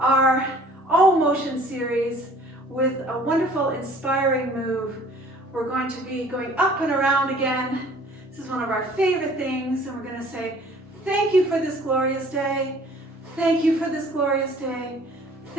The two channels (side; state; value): both; normal; correlation 0.53